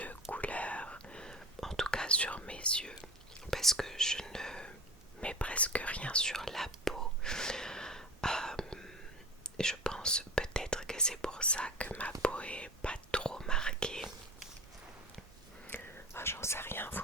couleur, en tout cas sur mes yeux, parce que je ne mets presque rien sur la peau. Je pense peut-être que c'est pour ça que ma peau est pas trop marquée. J'en sais rien, vous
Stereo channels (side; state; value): both; normal; correlation 0.33